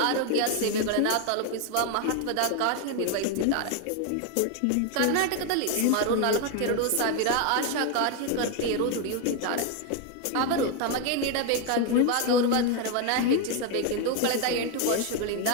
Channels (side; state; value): both; different; correlation 0.01